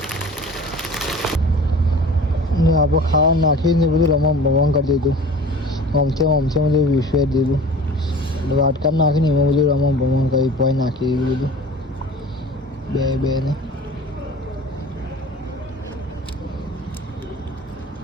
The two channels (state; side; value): normal; both; correlation 0.41